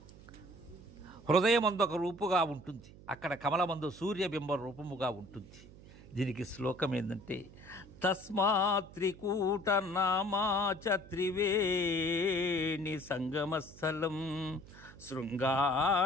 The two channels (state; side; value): noise; right; hum, 20 dB below the sound